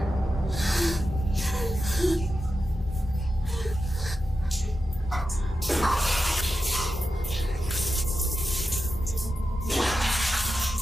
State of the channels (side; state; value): both; normal; correlation 0.90